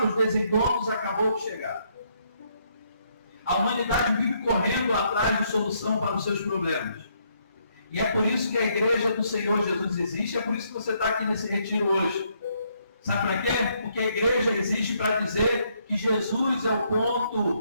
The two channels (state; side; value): inverted; both; correlation -0.73